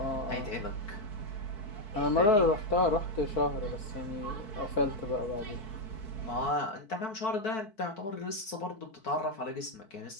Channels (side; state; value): right; late; 4.5 ms